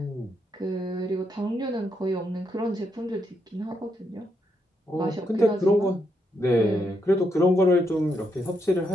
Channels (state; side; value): normal; both; correlation 0.80